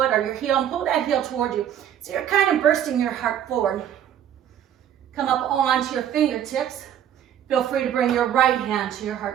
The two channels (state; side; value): quieter; left; 10.1 dB